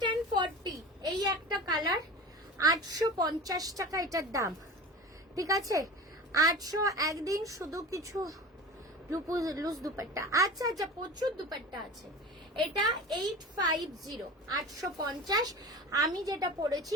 and 40, এই একটা কালার 850 টাকা এটার দাম। ঠিক আছে, 800। একদিন শুধু কিছু লুজ দুপাট্টা। আচ্ছা আচ্ছা, প্রচুর দুপাট্টা আছে। এটা 850, 850। আমি যেটা পরেছি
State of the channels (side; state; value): both; normal; correlation 0.33